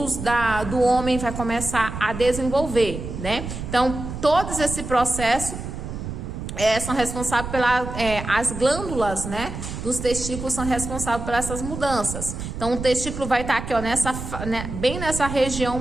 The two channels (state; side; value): noise; right; rumble, 7 dB below the sound